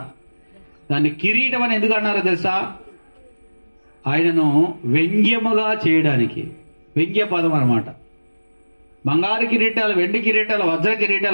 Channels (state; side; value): inverted; both; correlation -1.00